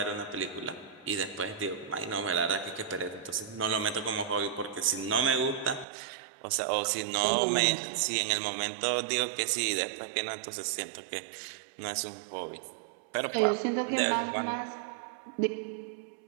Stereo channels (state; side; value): drops out; left; at 5.9 s